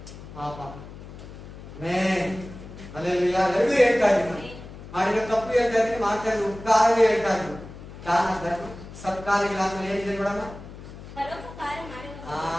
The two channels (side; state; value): left; noise; hum, 14 dB below the sound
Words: ಪಾಪ. ಅಲ್ಲೆಲ್ಲ ಎರಡೂ ಹೇಳ್ತಾ ಇದ್ದೀನಿ, ನಾನು ಮಾಡಿರೋ ತಪ್ಪು ಹೇಳ್ತಾ ಇದ್ದೀನಿ, ಮಾಡ್ತಾ ಇದ್ದೀನಿ ಉಪಕಾರವೇ ಹೇಳ್ತಾ ಇದ್ದೀನಿ. ದಾನ ಧರ್ಮ ಸತ್ಕಾರ್ಯಗಳಾದ್ಮೇಲೆ ಏನಿದೆ ನೋಡೋಣ. ಪರೋಪಕಾರ ಮಾಡುವವರು.